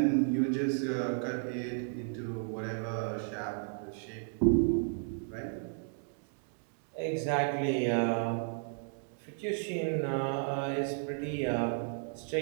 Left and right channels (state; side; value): silent; left; 55 dB below the other